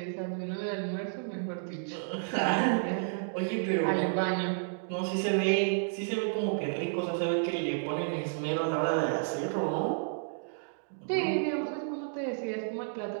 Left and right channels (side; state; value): left; silent; digital silence